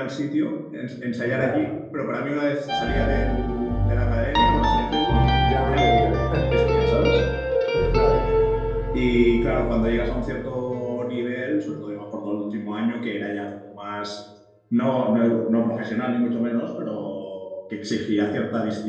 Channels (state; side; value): identical; both; correlation 1.00